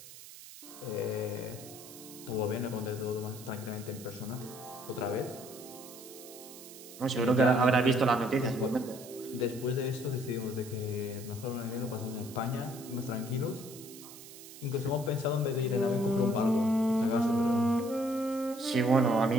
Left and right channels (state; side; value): noise; right; hiss, 16 dB below the sound